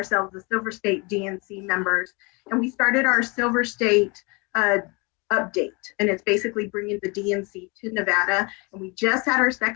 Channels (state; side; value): quieter; right; 29.4 dB